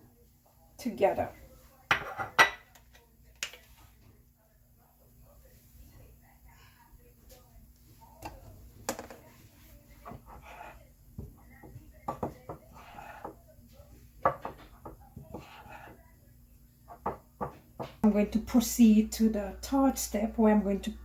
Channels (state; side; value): identical; both; correlation 1.00